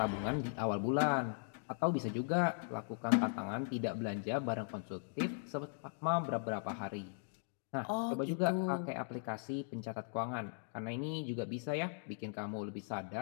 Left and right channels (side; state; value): right; silent; digital silence